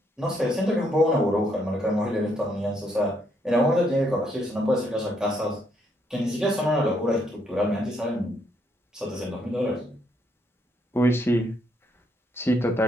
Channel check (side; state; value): both; normal; correlation 0.73